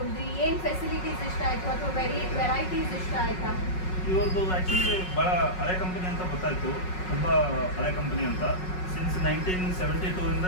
ಏನ್ ಫೆಸಿಲಿಟೀಸ್ ಇಷ್ಟ ಆಯ್ತು ಅಥವಾ ವೆರೈಟೀಸ್ ಇಷ್ಟ ಆಯ್ತಾ? ಇವ್ರದ್ದು ಆ್ಯಕ್ಚುಲಿ ಭಾಳ ಹಳೆ ಕಂಪನಿ ಅಂತ ಗೊತ್ತಾಯಿತು, ತುಂಬ ಹಳೆ ಕಂಪನಿ ಅಂತ. ಸಿನ್ಸ್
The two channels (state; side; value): late; right; 5.4 ms